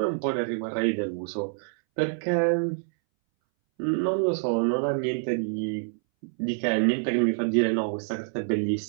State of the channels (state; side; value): silent; left; 60 dB below the other